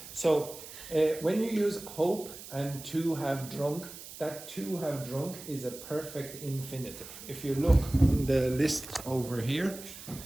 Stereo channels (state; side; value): noise; right; hiss, 14 dB below the sound